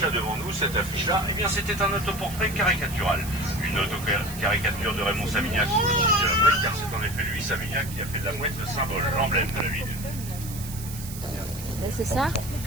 devant nous, cette affiche-là, eh bien c'était un autoportrait caricatural. Une autocaricature de Raymond Savignac sur le site de la Mouette, car c'est en effet lui, Savignac, qui a fait de la Mouette le symbole, l'emblème de la ville. C'est ça?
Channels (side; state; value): right; noise; hiss, 12 dB below the sound